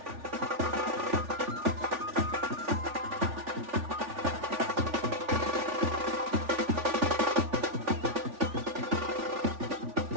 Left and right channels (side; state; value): left; late; 3.4 ms